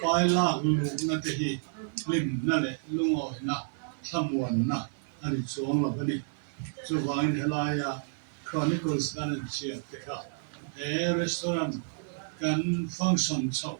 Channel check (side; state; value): left; silent; 58 dB below the other